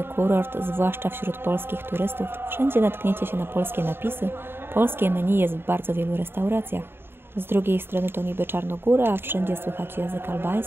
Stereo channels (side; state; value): left; late; 0.11 ms